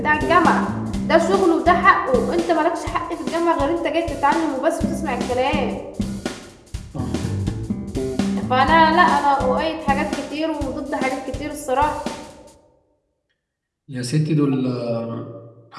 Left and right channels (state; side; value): identical; both; correlation 1.00